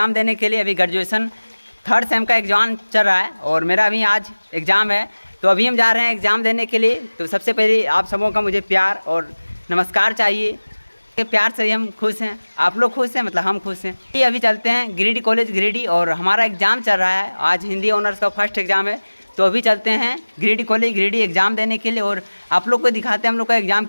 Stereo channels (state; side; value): inverted; both; correlation -1.00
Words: देने के लिए। अभी ग्रेजुएशन 3rd सेम का एग्ज़ाम चल रहा है और मेरा अभी आज एग्ज़ाम है, तो अभी हम जा रहे हैं एग्ज़ाम देने के लिए। तो सबसे पहले आप सबों का मुझे प्यार और नमस्कार चाहिए। के प्यार से ही हम खुश हैं, आप लोग खुश हैं, मतलब हम खुश हैं। ये अभी चलते हैं गिरिडीह कॉलेज गिरिडीह और हमारा एग्ज़ाम चल रहा है, आज हिंदी ऑनर्स का फर्स्ट एग्ज़ाम है। तो अभी चलते हैं गिरिडीह कॉलेज गिरिडीह एग्ज़ाम देने के लिए और आप लोग को दिखाते हैं हम लोग का एग्ज़ाम